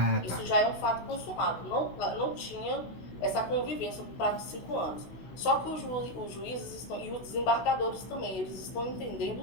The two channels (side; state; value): right; late; 16 ms